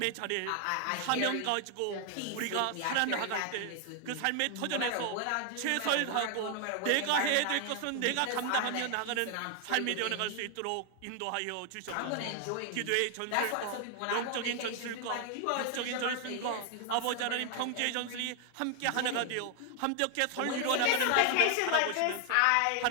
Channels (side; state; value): both; different; correlation 0.00